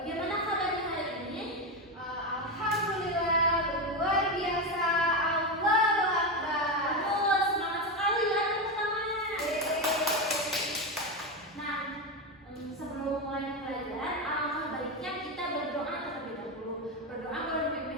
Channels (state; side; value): normal; both; correlation 0.13